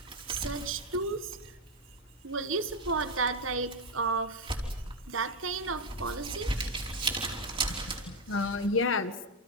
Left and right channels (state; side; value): normal; both; correlation 0.07